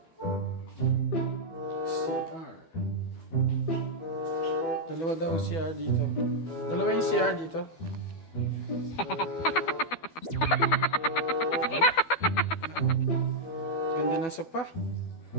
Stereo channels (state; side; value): late; right; 12 ms